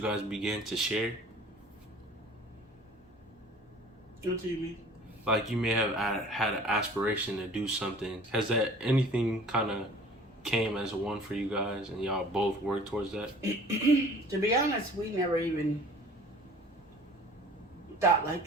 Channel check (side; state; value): both; normal; correlation 0.47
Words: guys began to share? What do you mean? Like you may have had an aspiration to do something. Has that anything kind of came as a one for you guys and y'all both worked towards that? To be honest, we never even thought like